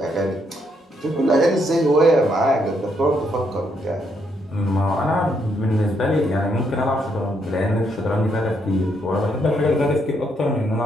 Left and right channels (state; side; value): normal; both; correlation 0.75